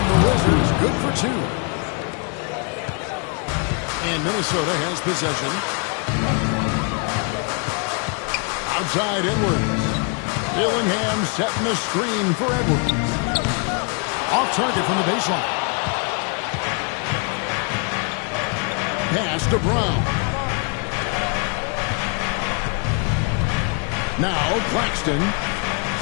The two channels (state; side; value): quieter; right; 38.1 dB